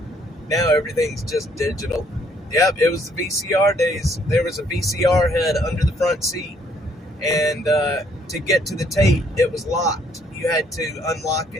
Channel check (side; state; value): both; normal; correlation 0.66